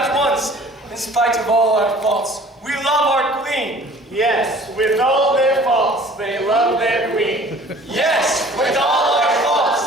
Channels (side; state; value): both; normal; correlation 0.50